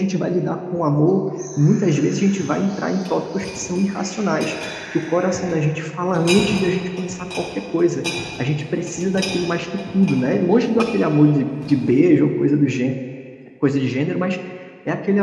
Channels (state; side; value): identical; both; correlation 1.00